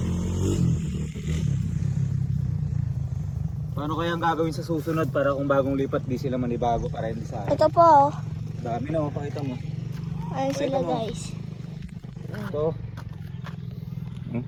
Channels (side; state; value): both; identical; correlation 1.00